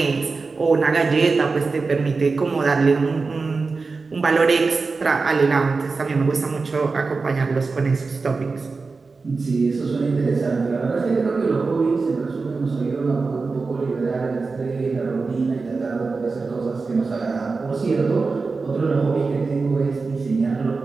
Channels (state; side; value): quieter; left; 4.2 dB